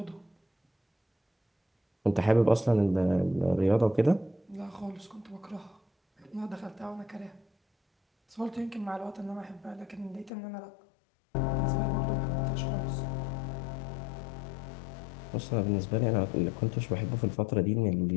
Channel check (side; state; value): right; drops out; at 10.3 s